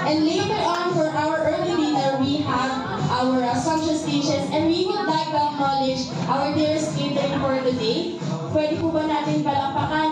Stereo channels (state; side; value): identical; both; correlation 1.00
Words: and later on for our early dinner we have our sumptuous dishes, and we would like to acknowledge our dearest catering for today. Pwede po ba natin